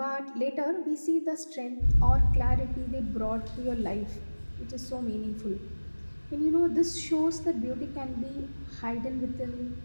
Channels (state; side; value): inverted; both; correlation -1.00